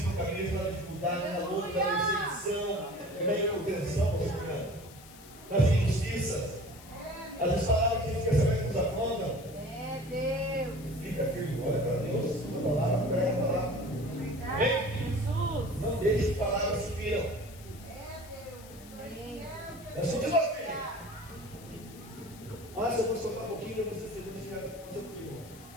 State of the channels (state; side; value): noise; left; hiss, 20 dB below the sound